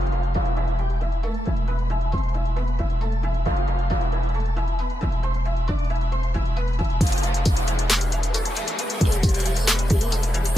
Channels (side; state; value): both; normal; correlation 0.87